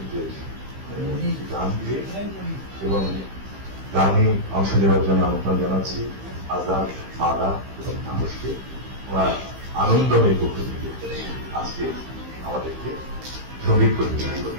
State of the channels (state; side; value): late; left; 15 ms